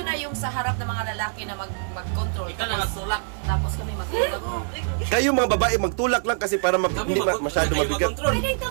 na yung sa harap ng mga lalaki na mag-control. Ikaw na nagtulak. Tapos kami mag-ilog. Kayo mga babae, magtulak lang kasi para hindi masyado mabigat. Pwede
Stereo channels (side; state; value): left; silent; digital silence